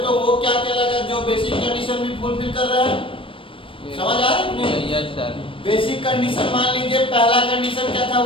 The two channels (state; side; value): late; right; 0.25 ms